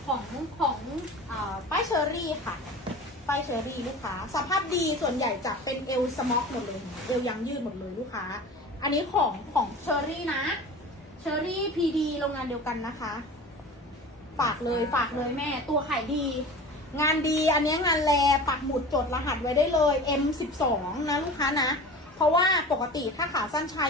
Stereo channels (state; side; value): normal; both; correlation 0.36